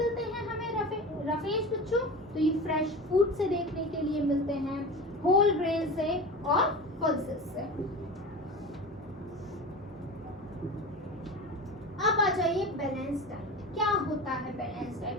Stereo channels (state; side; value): normal; both; correlation 0.30